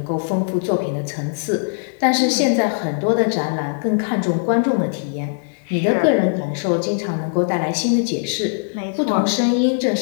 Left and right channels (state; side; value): silent; right; digital silence